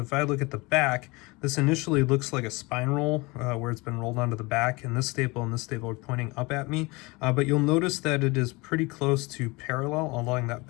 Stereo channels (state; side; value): quieter; right; 25.0 dB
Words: I look at the back, this initially looks like a spine roll where it's been rolled onto the back, and this staple are pointing up at me. But you'll notice that it is pretty close to parallel along that